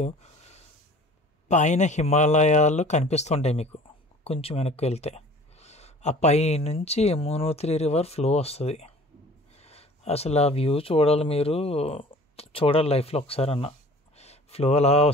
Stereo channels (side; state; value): both; normal; correlation 0.46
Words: పైన హిమాలయాలు కనిపిస్తుంటాయి మీకు. కొంచెం వెనక్కి వెళ్తే ఆ పై నుంచి యమునోత్రి రివర్ ఫ్లో వస్తుంది. అసలు ఆ వ్యూ చూడాలి, మీరు చూడాలి లైఫ్లో ఒకసారి అన్న. ఫ్లో అలా